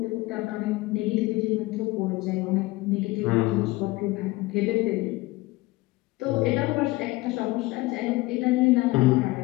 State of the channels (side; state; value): right; quieter; 20.8 dB